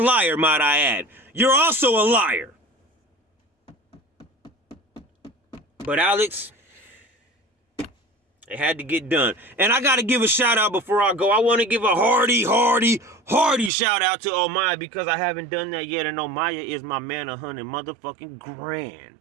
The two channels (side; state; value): left; drops out; at 13.7 s